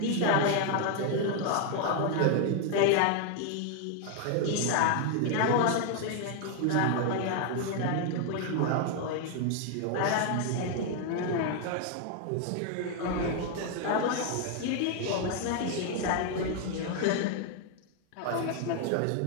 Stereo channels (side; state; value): both; different; correlation 0.00